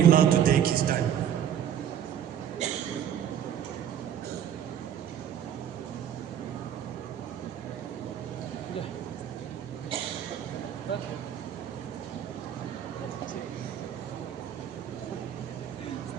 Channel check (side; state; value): left; quieter; 9.6 dB